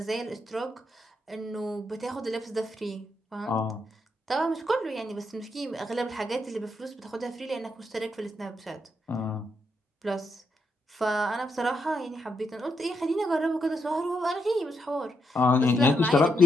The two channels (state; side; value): normal; both; correlation 0.80